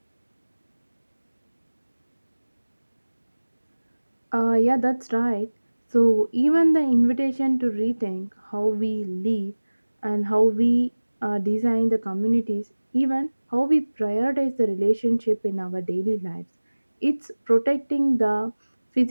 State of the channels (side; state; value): both; inverted; correlation -1.00